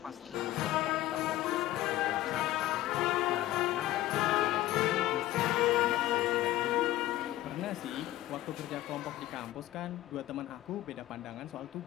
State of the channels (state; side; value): quieter; right; 15.3 dB